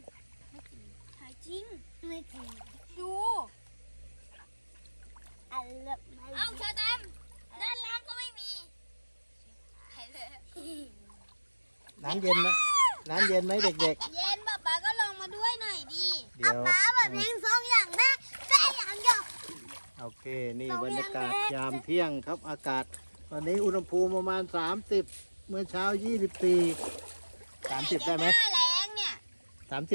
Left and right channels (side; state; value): both; inverted; correlation -1.00